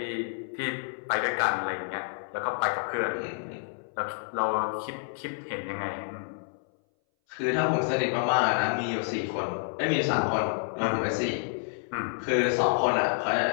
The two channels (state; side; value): silent; right; 59 dB below the other